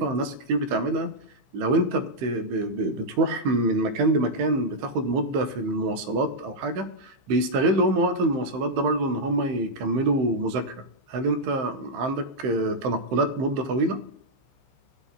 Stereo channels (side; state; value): left; late; 15 ms